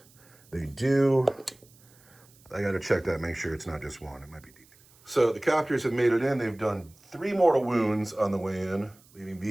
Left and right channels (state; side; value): noise; right; hiss, 28 dB below the sound